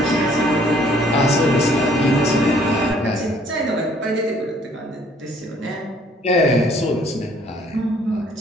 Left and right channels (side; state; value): both; normal; correlation 0.60